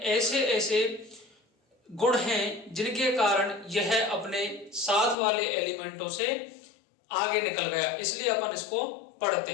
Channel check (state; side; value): drops out; right; at 5.2 s